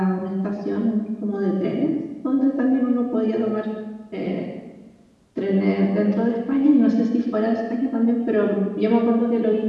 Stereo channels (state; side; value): identical; both; correlation 1.00